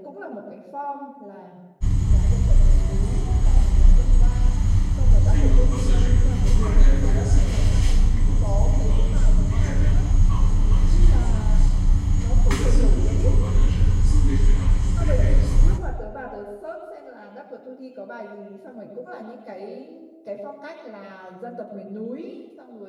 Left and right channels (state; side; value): identical; both; correlation 1.00